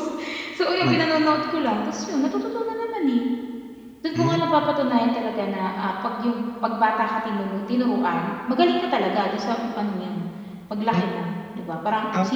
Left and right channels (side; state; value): both; identical; correlation 1.00